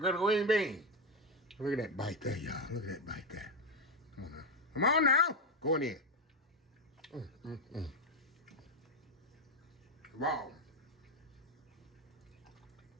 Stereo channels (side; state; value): both; normal; correlation 0.08